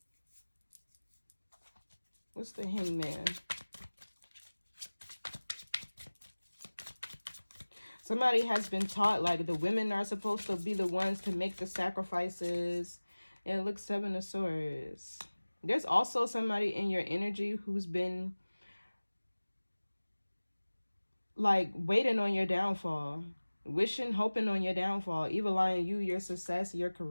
What's the Hangman? Somebody has been taught like the women are supposed to be the ones to make the sacrifices. And it looks Seven of Swords. There's also somebody in your energy who's been like waiting on your downfall, wishing, hoping on your downfall, evil eyeing you, your success, your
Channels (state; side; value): inverted; both; correlation -1.00